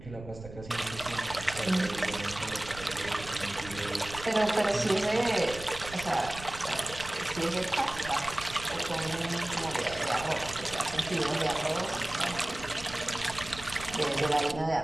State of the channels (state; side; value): noise; right; rumble, 14 dB below the sound